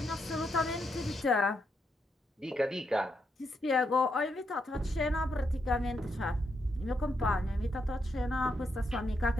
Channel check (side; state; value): both; normal; correlation 0.80